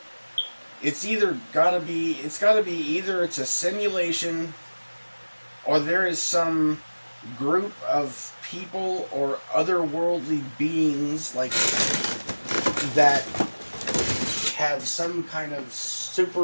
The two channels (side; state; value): both; inverted; correlation -1.00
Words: It's gotta be either it's a simulation or there is some group of people or otherworldly beings like that have some kind of